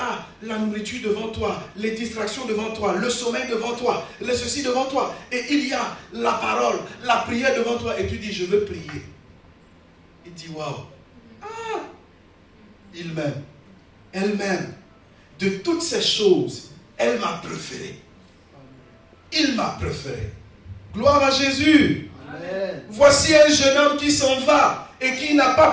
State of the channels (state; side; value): identical; both; correlation 1.00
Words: la nourriture devant toi, les distractions devant toi, le sommeil devant toi, le ceci devant toi. Et il y a la parole, la prière devant toi. Et tu dis, je veux prier. Il dit, waouh. Ah, il m'aime. Elle m'aime. De toutes ces choses, elle m'a préféré. Il m'a préféré. Gloire à Jésus. Amen. Voici un jeune homme qui s'en va et qui n'a pas